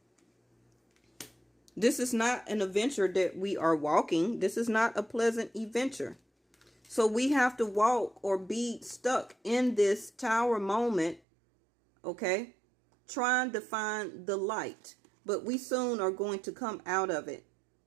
This is not an adventure that we are walking. This is not a pleasant adventure. So we have to walk or be stuck in this tower moment, okay? Trying to find the light. But we soon are going to come out of it,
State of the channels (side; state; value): left; drops out; at 11.2 s